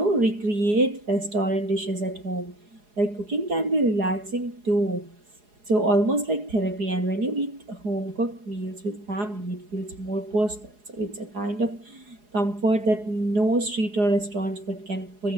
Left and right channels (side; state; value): left; late; 4.8 ms